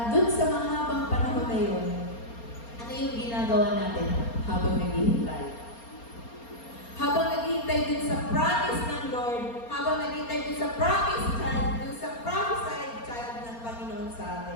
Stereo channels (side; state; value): right; late; 4.3 ms